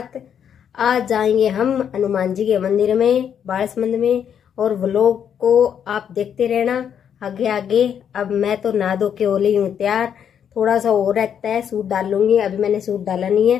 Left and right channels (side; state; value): right; quieter; 8.4 dB